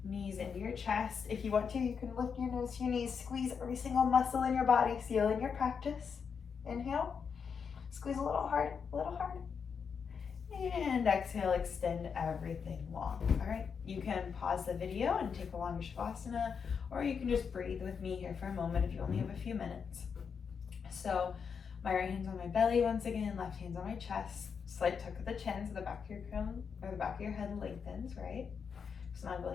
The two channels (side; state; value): right; quieter; 6.3 dB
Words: knees into your chest. If you want to, you can lift your nose to your knees, squeeze every single muscle in your body. Seal in your practice. Inhale, squeeze a little hard, and exhale, extend everything long. All right, you can pause the video and take a longer shavasana, or you can just breathe with me here for a moment if you only have a few minutes. So my right hand's on my belly once again, left hand's on my chest. Slight tuck of the chin so the back of your crown or the back of your head lengthens, right?